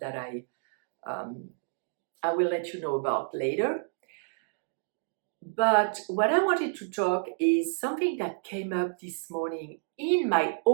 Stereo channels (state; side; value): silent; left; digital silence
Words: I will let you know about later. But what I wanted to talk is something that came up this morning in my